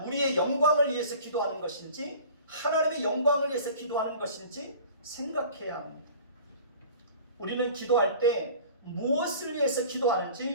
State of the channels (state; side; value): inverted; both; correlation -0.44